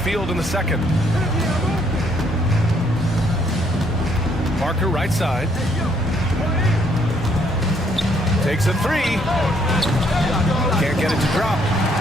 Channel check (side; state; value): both; normal; correlation 0.69